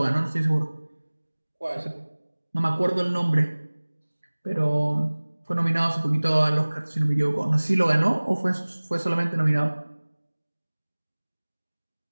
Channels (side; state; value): both; inverted; correlation -1.00